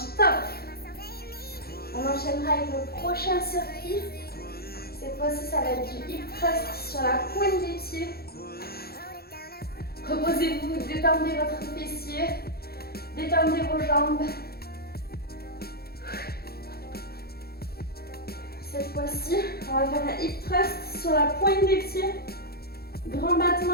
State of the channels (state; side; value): late; right; 0.45 ms